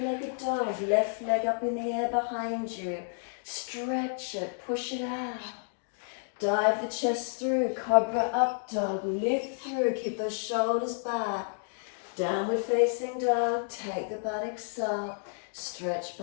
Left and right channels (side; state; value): right; silent; digital silence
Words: dog. Left leg up in the air behind you. Stretch it, push it out. Dive the chest through, cobra up dog. Lift through, keep those shoulders back. Downward facing dog, take the buttocks up. Stretch